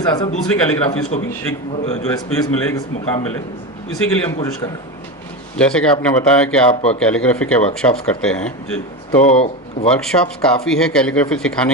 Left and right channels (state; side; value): normal; both; correlation 0.19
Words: साथ साथ दूसरी कैलीग्राफीज को भी एक जो है स्पेस मिले, एक मुकाम मिले, इसी के लिए हम कोशिश कर रहे हैं। जैसे कि आपने बताया कि आप कैलीग्राफी के वर्कशॉप्स करते हैं, जी, तो वर्कशॉप्स काफ़ी है कैलीग्राफी